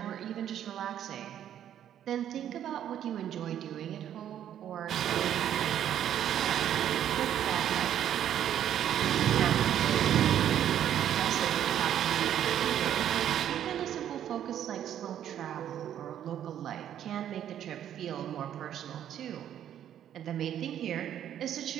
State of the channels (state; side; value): quieter; left; 10.5 dB